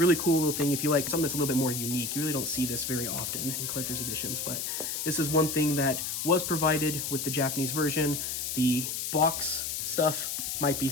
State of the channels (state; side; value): noise; left; hiss, 3 dB below the sound